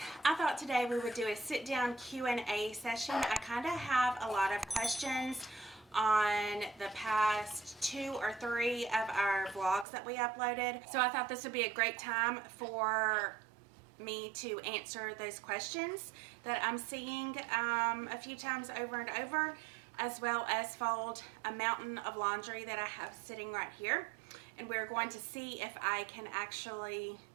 I thought today we would do a sit-down Q&A session. I kind of have a lot of questions on the past 2 or 3 of our vlogs that we uploaded. So I thought this would be a great time for me to answer those questions that I'm seeing a few times over and over, as well as fold a mountain of laundry that I have sitting right here. And we're going to see if I can actually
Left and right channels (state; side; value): drops out; left; at 9.9 s